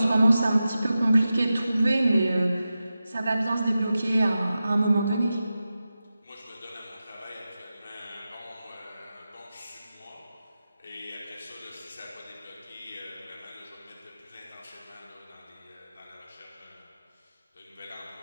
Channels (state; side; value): inverted; both; correlation -0.93